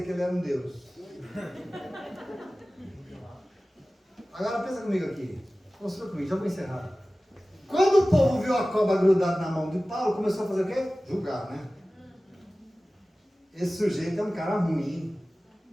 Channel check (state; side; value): normal; both; correlation 0.97